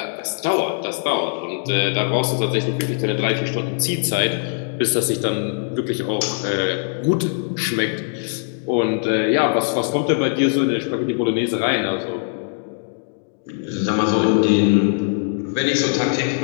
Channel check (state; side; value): silent; right; digital silence